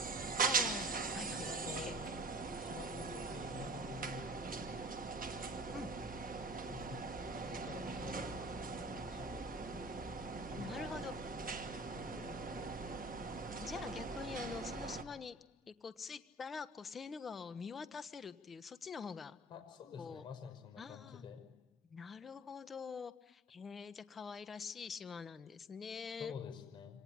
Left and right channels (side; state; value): both; normal; correlation 0.43